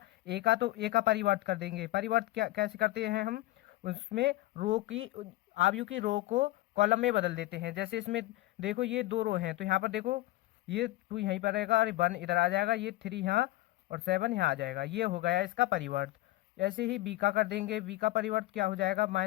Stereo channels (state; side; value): quieter; right; 17.7 dB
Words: ए का तो ए का परिवर्त कर देंगे। परिवर्त क्या कैसे करते हैं हम, उसमें रो की आव्यूह की रो को कॉलम में बदल देते हैं। जैसे इसमें देखो ये 2 रो हैं, तो यहाँ पर देखो ये 2 यहीं पर रहेगा और 1 इधर आ जाएगा, ये 3 यहाँ और 7 यहाँ आ जाएगा, ये हो गया इसका परिवर्त। ऐसे ही बी का कर देंगे, बी का परिवर्त क्या हो जाएगा,